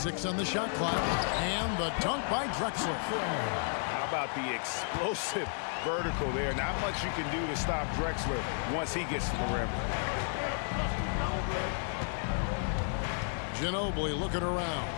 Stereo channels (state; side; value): silent; right; 56 dB below the other